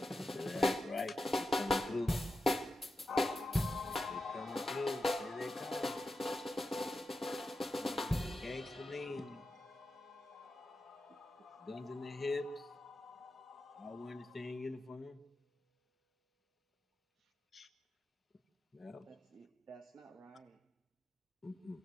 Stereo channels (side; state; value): both; normal; correlation 0.90